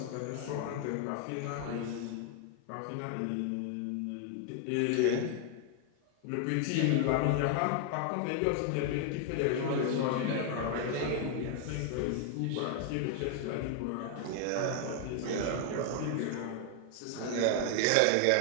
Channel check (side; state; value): both; different; correlation 0.00